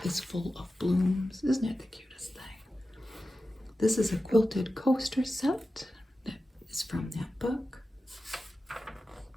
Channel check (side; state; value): both; normal; correlation 0.93